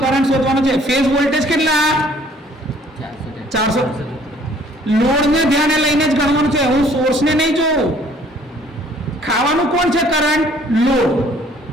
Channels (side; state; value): both; normal; correlation 0.58